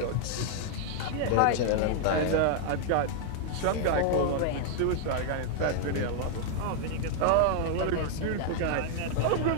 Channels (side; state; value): both; different; correlation 0.00